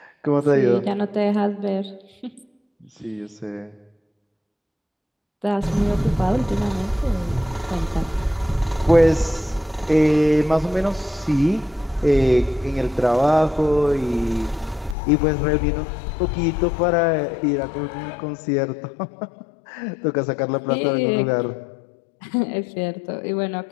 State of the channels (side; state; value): right; drops out; at 15.0 s